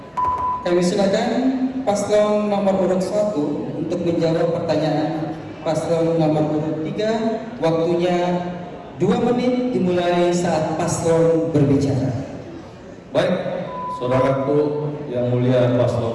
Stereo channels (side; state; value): both; identical; correlation 1.00